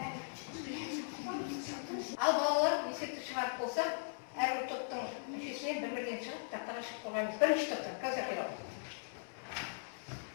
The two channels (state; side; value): silent; right; 52 dB below the other